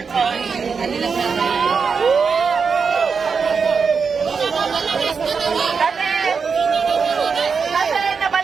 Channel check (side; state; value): left; quieter; 5.5 dB